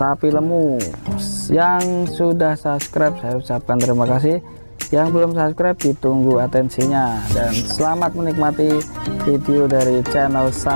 Lemu. Yang sudah subscribe saya ucapkan terima kasih. Yang belum subscribe ditunggu atensinya. Dan selamat menikmati video dari channel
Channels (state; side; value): inverted; both; correlation -1.00